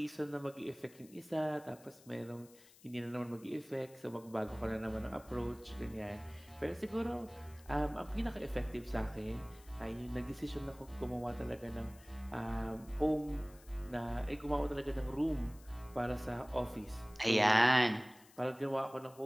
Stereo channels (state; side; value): noise; left; hiss, 24 dB below the sound